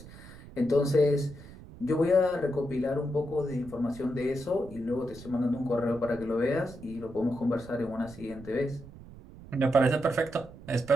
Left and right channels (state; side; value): noise; right; rumble, 17 dB below the sound